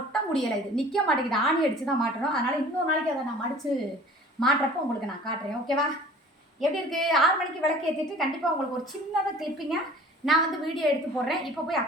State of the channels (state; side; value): normal; both; correlation 0.46